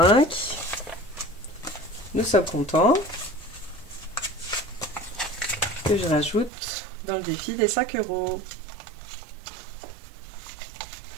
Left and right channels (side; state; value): left; drops out; at 6.5 s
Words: Nous sommes contents. Que je rajoute dans le défi des 5 euros.